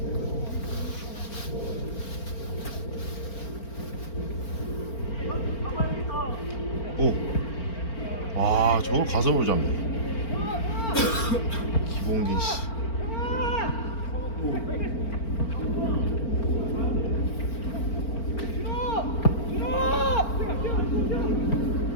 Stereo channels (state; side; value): late; right; 4.4 ms